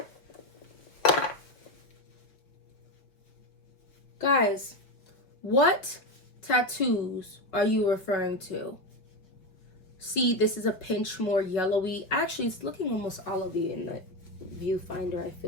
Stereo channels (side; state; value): right; late; 5.1 ms